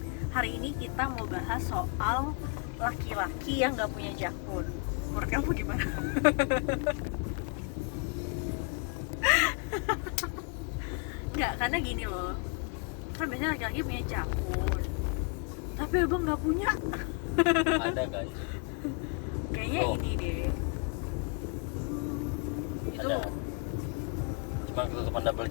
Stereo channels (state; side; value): quieter; right; 35.1 dB